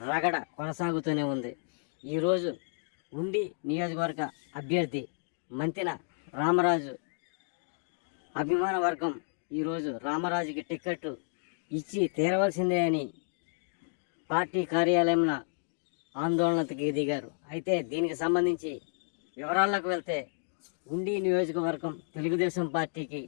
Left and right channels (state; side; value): silent; right; digital silence